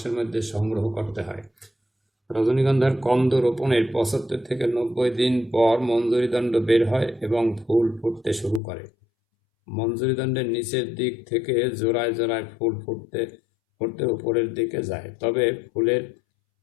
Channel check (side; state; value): right; drops out; at 8.6 s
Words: মধ্যে সংগ্রহ করতে হয়। রজনীগন্ধার কন্দ রোপণের 75 থেকে 90 দিন পর মঞ্জরিদণ্ড বের হয় এবং ফুল ফুটতে শুরু করে। মঞ্জরিদণ্ডের নিচের দিক থেকে জোড়ায় জোড়ায় ফুল ফুটতে ফুটতে উপরের দিকে যায়, তবে ফুলের